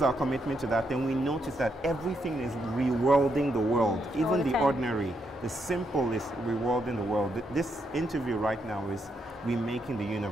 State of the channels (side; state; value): both; normal; correlation 0.79